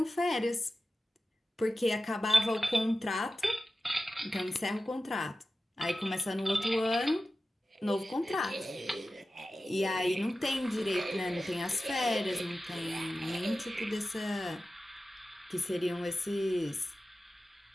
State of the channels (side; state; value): both; normal; correlation 0.94